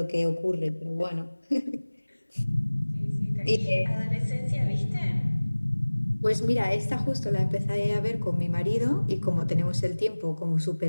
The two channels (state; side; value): inverted; both; correlation -1.00